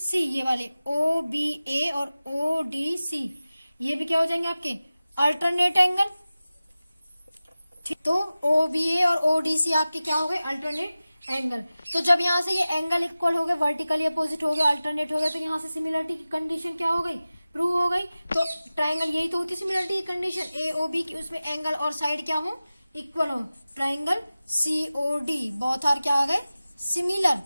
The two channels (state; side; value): inverted; both; correlation -0.96